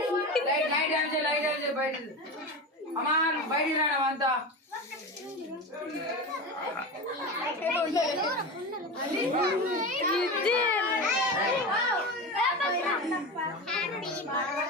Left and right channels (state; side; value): normal; both; correlation 0.24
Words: అమ్మా బయటికి రావడం అంతా